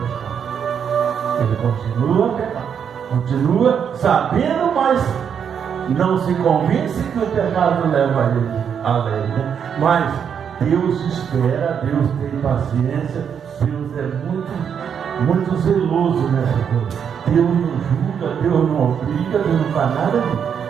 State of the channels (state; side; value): quieter; left; 7.7 dB